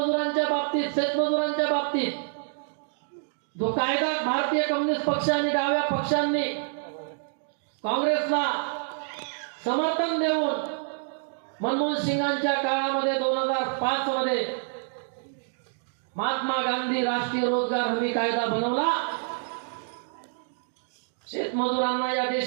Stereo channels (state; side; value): silent; left; digital silence